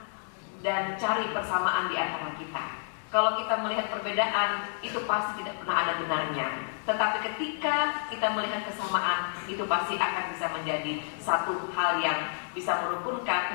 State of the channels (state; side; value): silent; right; digital silence